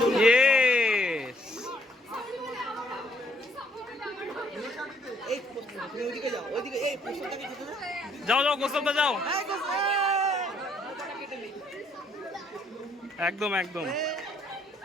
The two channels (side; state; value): both; normal; correlation 0.67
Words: Yes! যাও যাও গোসলটা যাও, একদম একদম